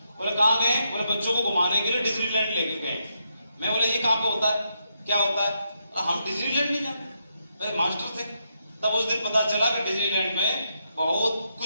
बोले कहाँ गए? बोले बच्चों को घुमाने के लिए डिज्नीलैंड लेके गए। मैं बोले ये कहाँ पे होता है, क्या होता है? हम डिज्नीलैंड नहीं जानते, मेरे मास्टर थे। तब उस दिन पता चला कि डिज्नीलैंड में बहुत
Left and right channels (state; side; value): inverted; both; correlation -0.80